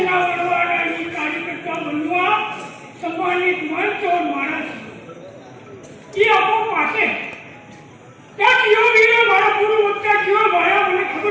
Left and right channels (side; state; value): both; identical; correlation 1.00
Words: बनवाना ये कार्यकर्ता बनवा सम्मानित मंच और महाराज ये आपको पासे क्या क्यों भी हमारा पूर्व वक्ता क्यों भाया मैंने